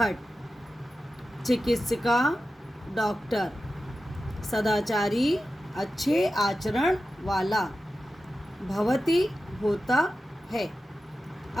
चिकित्सिका डॉक्टर, सदाचारी अच्छे आचरण वाला, भवती होता है,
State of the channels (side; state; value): both; normal; correlation 0.92